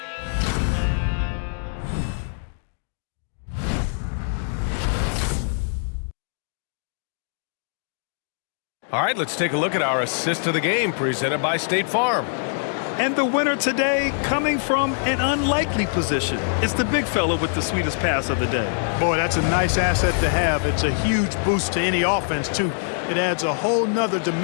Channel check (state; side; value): silent; right; digital silence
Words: All right, let's take a look at our assist of the game presented by State Farm. And the winner today coming from an unlikely position. It's the big fella with the sweetest pass of the day. Boy, that's a nice asset to have. It's a huge boost to any offense, too. It adds a whole nother